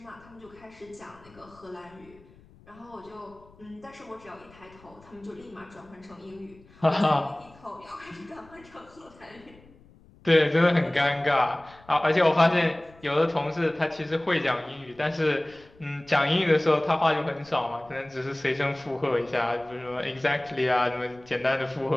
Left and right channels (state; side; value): noise; left; rumble, 26 dB below the sound